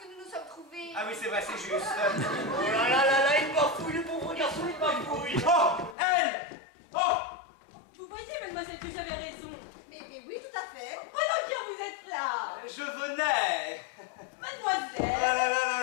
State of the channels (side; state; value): right; drops out; at 6.0 s